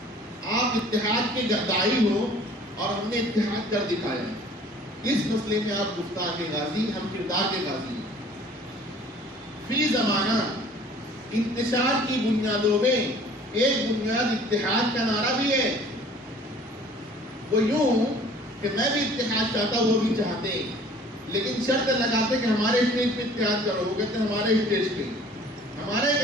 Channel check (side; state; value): both; normal; correlation 0.51